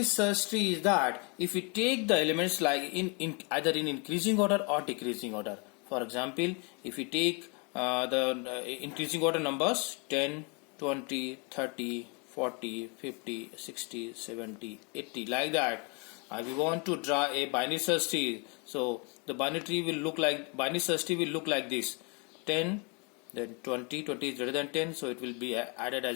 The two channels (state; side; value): quieter; right; 33.4 dB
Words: search tree is that if we take the elements like in either in increasing order or decreasing order. For example, if we take the increasing order numbers 10, 20, 30, 40, 50, 60, 70, 80 like that. We want to draw a binary search tree. So the binary search tree will look like this: 10, then 20. 20 is greater than 10, so it will be added